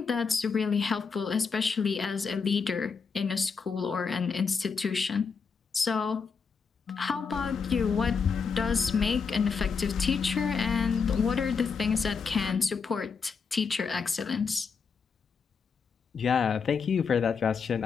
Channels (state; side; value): quieter; right; 5.5 dB